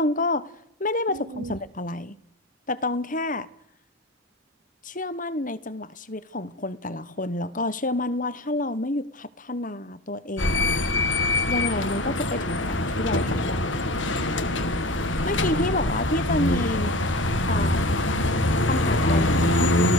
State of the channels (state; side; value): normal; both; correlation 0.33